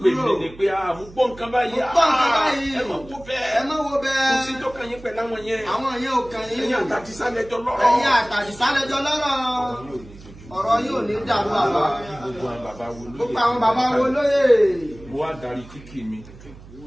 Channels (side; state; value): right; noise; hum, 19 dB below the sound